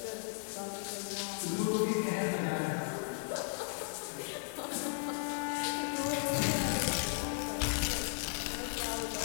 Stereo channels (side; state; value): right; silent; digital silence